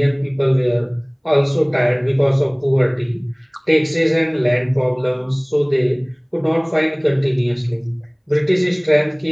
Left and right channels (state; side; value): identical; both; correlation 1.00